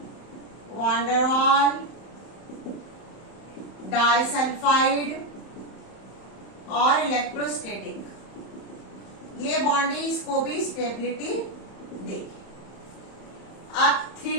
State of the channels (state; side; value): late; right; 31 ms